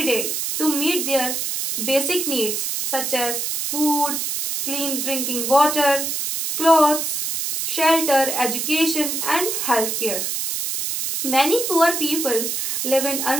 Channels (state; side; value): noise; right; hiss, 2 dB below the sound